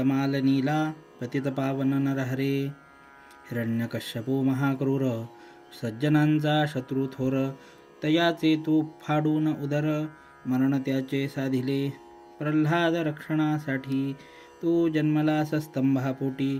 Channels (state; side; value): identical; both; correlation 1.00